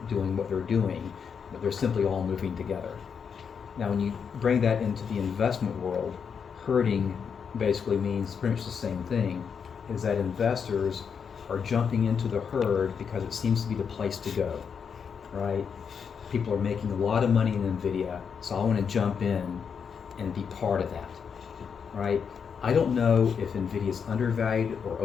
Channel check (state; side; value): quieter; right; 6.6 dB